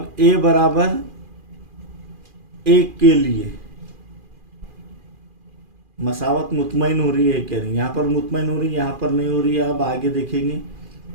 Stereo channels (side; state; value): left; late; 2.4 ms